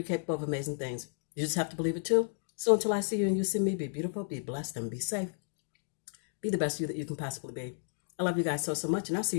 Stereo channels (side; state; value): right; silent; digital silence